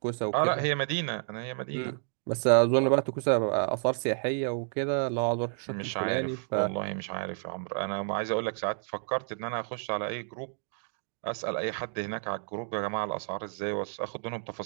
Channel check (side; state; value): left; silent; digital silence